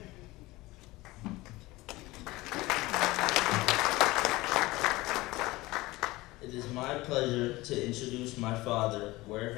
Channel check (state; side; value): quieter; right; 20.0 dB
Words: It is my pleasure to introduce my father,